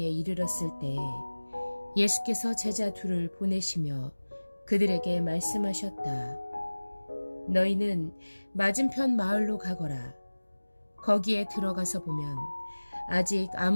이르렀을 때에 예수께서 제자 둘을 보내시며 그들에게 말씀하셨다. 너희는 맞은편 마을로 가거라. 거기에 들어가서 보면 아직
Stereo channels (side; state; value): both; inverted; correlation -1.00